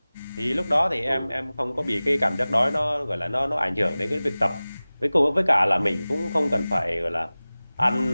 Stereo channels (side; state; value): both; inverted; correlation -0.98